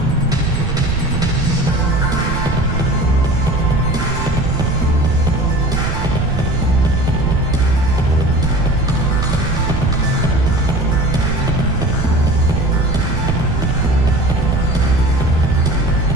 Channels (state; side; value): noise; right; rumble, 4 dB below the sound